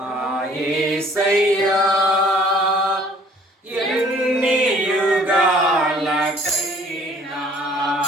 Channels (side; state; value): both; normal; correlation 0.56